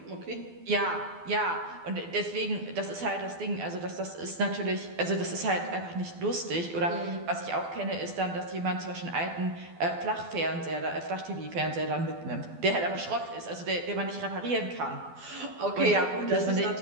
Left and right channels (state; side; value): late; left; 12 ms